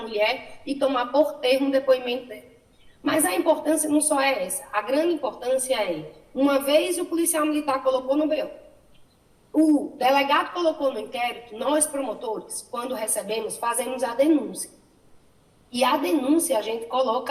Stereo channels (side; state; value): both; identical; correlation 1.00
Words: e tomar por termo o depoimento dela. Mas a importância não só é essa. A grande importância é, uma vez o policial militar colocou no BO, o delegado colocou no inquérito, nós promotores, quando recebemos, fazemos a denúncia. E a denúncia a gente